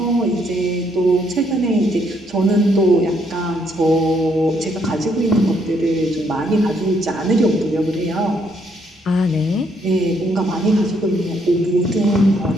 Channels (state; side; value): normal; both; correlation 0.71